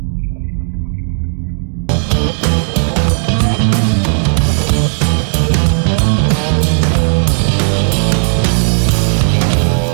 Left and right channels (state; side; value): silent; left; 70 dB below the other